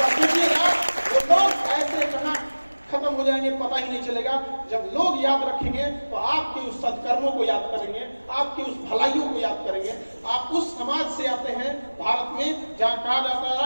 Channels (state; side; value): inverted; both; correlation -1.00